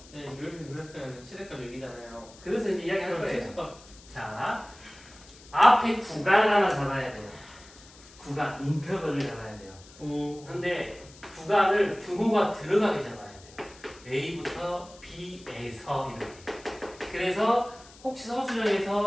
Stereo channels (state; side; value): noise; left; hiss, 22 dB below the sound